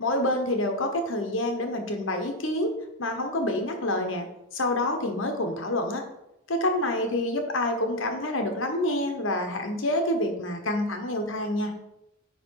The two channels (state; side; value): normal; both; correlation 0.05